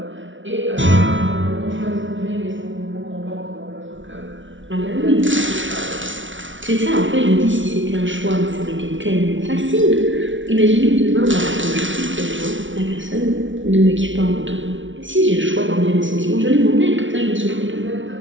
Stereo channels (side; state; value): left; late; 0.56 ms